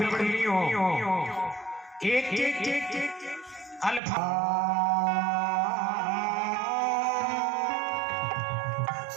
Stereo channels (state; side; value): drops out; left; at 4.0 s